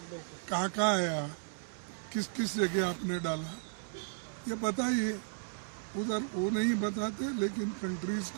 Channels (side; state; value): left; silent; 55 dB below the other